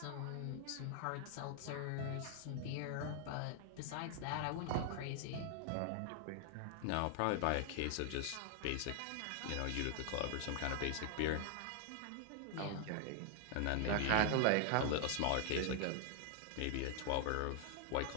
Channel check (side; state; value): both; different; correlation 0.00